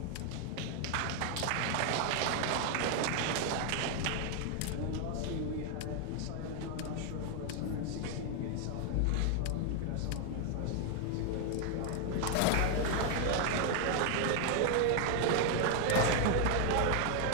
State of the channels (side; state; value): both; different; correlation 0.00